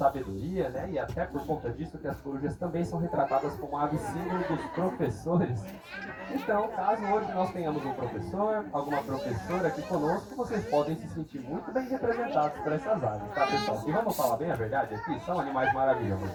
né? E até por conta disso que as corujas também são retratadas como aves símbolo dos professores. Então, caso hoje nós tenhamos um professor, alguma professora aqui conosco, vocês podem se sentir muito bem representados por essas aves, tá, pessoal? E vamos falar bem a verdade aqui, são animais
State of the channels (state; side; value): identical; both; correlation 1.00